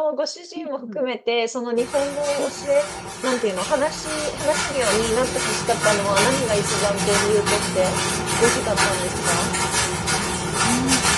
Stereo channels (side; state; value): both; identical; correlation 1.00